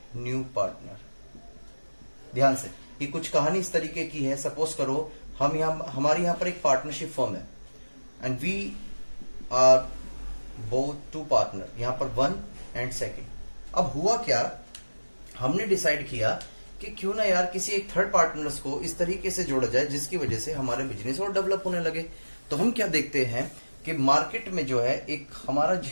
new partner. ध्यान से, ये कुछ कहानी इस तरीके की है। सपोज करो हमारे यहाँ पर एक पार्टनरशिप फर्म है and we are both two partner, यहाँ पर 1 एंड 2। अब हुआ क्या, हमने डिसाइड किया कि क्यों ना यार किसी एक थर्ड पार्टनर्स को इस तरीके से जोड़ा जाए जिसकी वजह से हमारे बिजनेस और डेवलप होने लगे। तो हम क्या देखते हैं कि मार्केट में जो है एक हमारा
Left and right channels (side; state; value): both; inverted; correlation -1.00